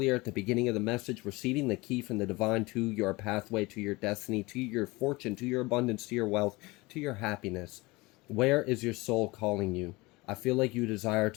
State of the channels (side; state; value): right; quieter; 22.9 dB